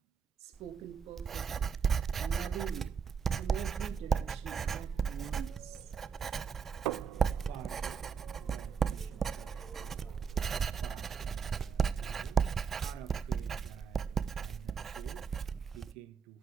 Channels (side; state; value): left; quieter; 6.4 dB